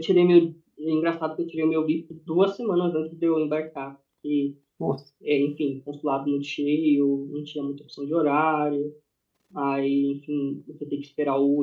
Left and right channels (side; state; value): both; identical; correlation 1.00